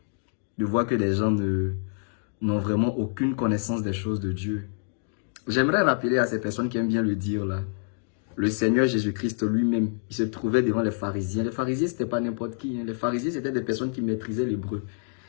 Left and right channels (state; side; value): silent; right; 60 dB below the other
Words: de voir que des gens n'ont vraiment aucune connaissance des choses de Dieu. J'aimerais rappeler à ces personnes qui aiment bien le dire là, le Seigneur Jésus-Christ lui-même, il se trouvait devant les pharisiens. Les pharisiens, c'était pas n'importe qui. Hein. Les pharisiens, c'était des personnes qui maîtrisaient l'hébreu.